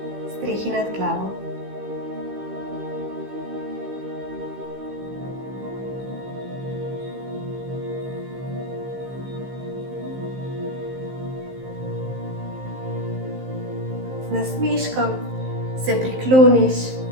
strehi nad glavo. Z nasmeškom se prikloniš.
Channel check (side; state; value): left; late; 15 ms